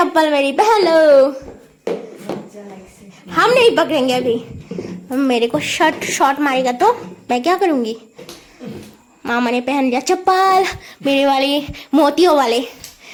मेरी पहन लो। हम नहीं पकड़ेंगे अभी, मेरे को शॉट मारेगा तो मैं क्या करूंगी। मामा ने पहन लिया चप्पल, मेरे वाले मोतियों वाले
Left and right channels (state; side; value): identical; both; correlation 1.00